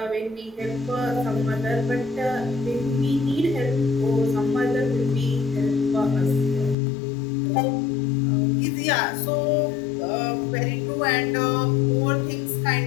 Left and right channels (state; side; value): drops out; right; at 6.8 s